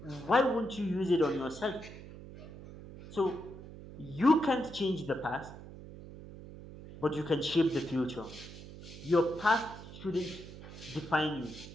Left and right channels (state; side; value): noise; right; hum, 14 dB below the sound